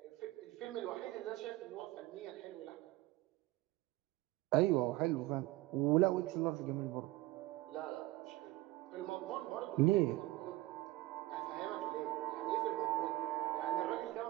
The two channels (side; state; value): left; quieter; 18.5 dB